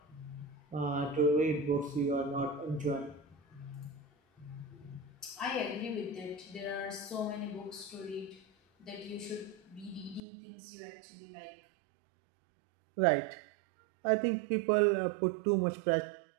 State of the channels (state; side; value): drops out; left; at 10.2 s